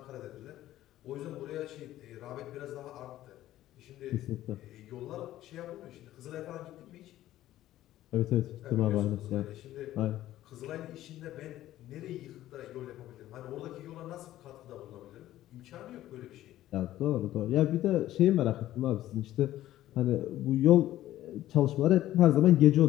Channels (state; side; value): quieter; right; 14.1 dB